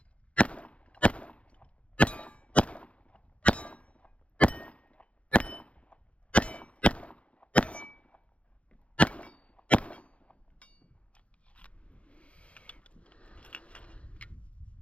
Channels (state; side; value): late; right; 0.062 ms